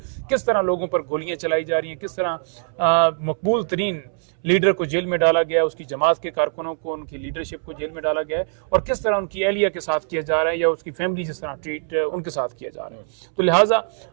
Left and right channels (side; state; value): left; silent; 64 dB below the other